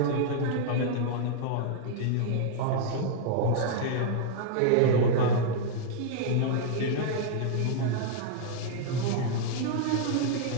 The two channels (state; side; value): different; both; correlation -0.01